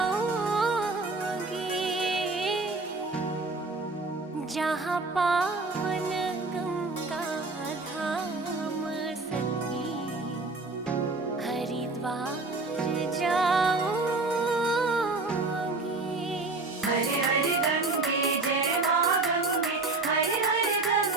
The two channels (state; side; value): quieter; left; 3.5 dB